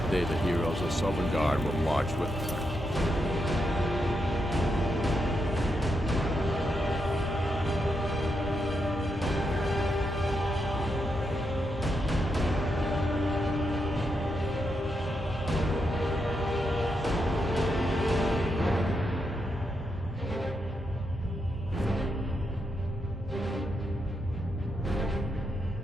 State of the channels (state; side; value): normal; both; correlation 0.83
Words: day, the heroes of Sovngarde will march with us.